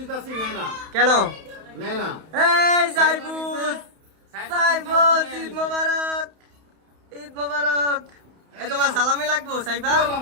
নাই না। কেন? নাই না। এই সাইফুস, সাইফুস, ঈদ মোবারক, ঈদ মোবারক। এই তোমার সালামি লাগবো Saifa?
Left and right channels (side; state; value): left; late; 31 ms